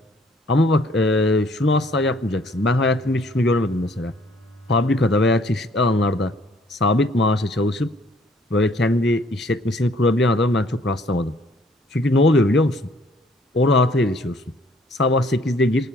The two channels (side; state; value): both; normal; correlation 0.61